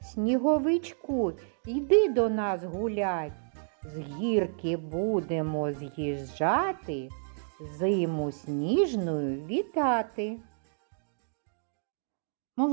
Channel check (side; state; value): left; silent; digital silence